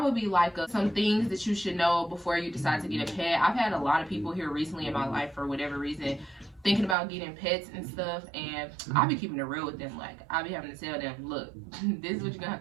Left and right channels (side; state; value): left; drops out; at 7.0 s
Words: be like some things that you should know before you decide to get a pet. I've had a lot of people here recently in my life, for whatever reason, thinking about getting pets and stuff, and I be keeping it real with them. Like, I be having to tell them, look, this is what you're gonna